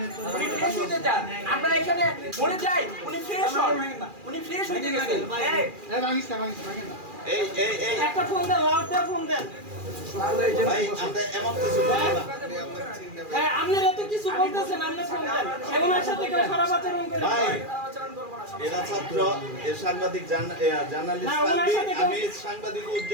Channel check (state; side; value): late; left; 2.4 ms